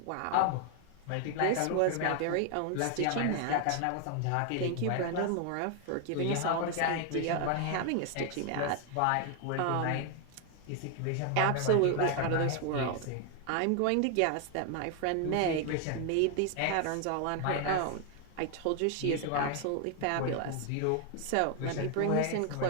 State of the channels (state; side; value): different; both; correlation 0.00